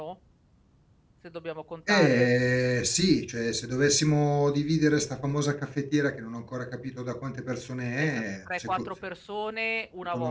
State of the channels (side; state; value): both; identical; correlation 1.00